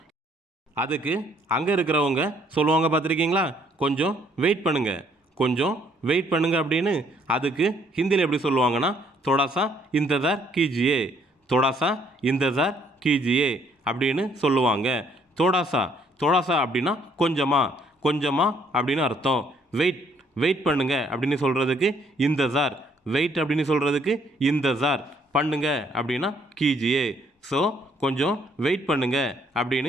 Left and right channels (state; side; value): normal; both; correlation 0.66